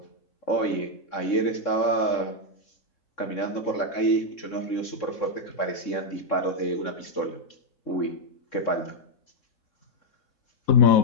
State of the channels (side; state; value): right; late; 3.7 ms